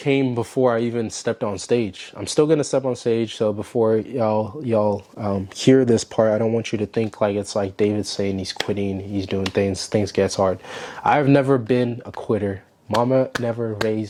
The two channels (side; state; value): both; identical; correlation 1.00